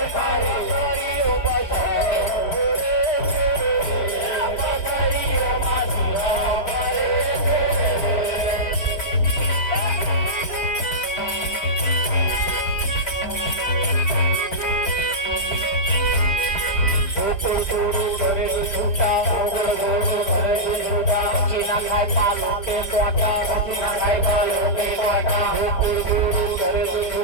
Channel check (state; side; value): late; right; 4.4 ms